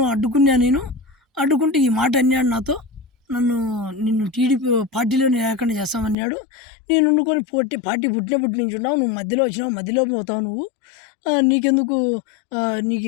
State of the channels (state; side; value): drops out; right; at 6.2 s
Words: అడ్డుకుంటే ఈ మాట అన్నాడు నాతో, నిన్ను టీడీపీ పార్టీలో లేకుండా చేస్తామన్నాడు. నేను వండుకొని పార్టీ పుట్టినప్పటి నుంచి ఉన్నావు, నువ్వు మధ్యలో వచ్చినావు, మధ్యలో పోతావు నువ్వు, నీకెందుకు,